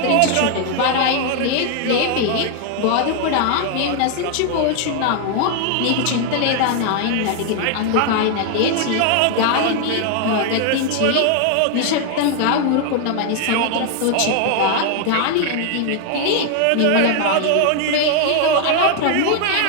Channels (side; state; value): both; different; correlation 0.00